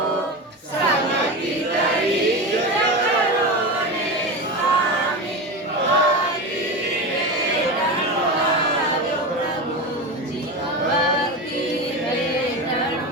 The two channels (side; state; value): both; normal; correlation 0.22